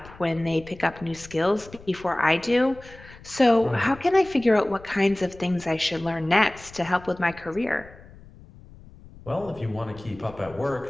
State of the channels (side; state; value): left; noise; rumble, 20 dB below the sound